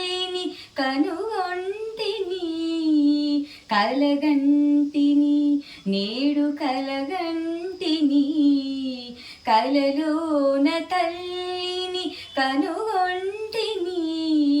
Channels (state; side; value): identical; both; correlation 1.00